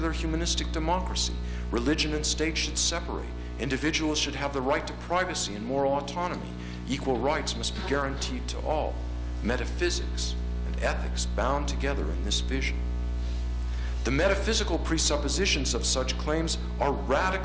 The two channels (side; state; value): both; identical; correlation 1.00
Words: humanistic democracy. Religion and state should separate. Individuals should have the right to privacy and moral autonomy. Equal rights must be guaranteed to all. Metaphysics and ethics bound together in this vision. The metaphysical presuppositions of such claims are